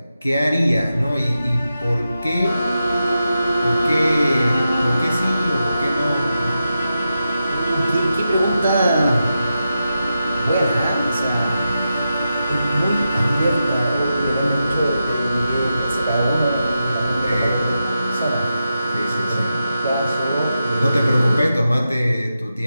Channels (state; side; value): inverted; both; correlation -0.89